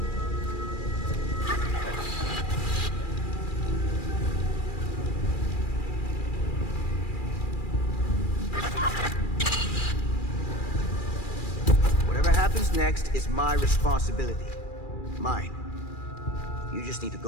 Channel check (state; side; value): late; right; 2.4 ms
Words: Whatever happens next is my responsibility. Mine. You just need to